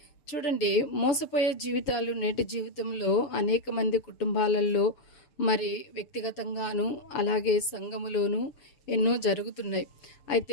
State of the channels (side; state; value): right; late; 6.8 ms